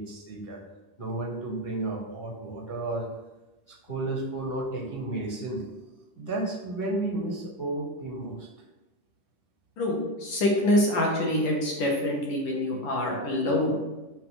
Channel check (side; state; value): right; late; 11 ms